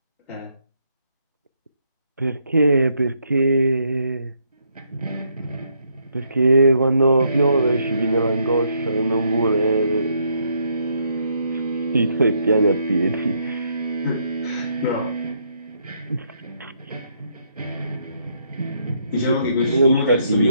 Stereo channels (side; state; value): both; inverted; correlation -0.73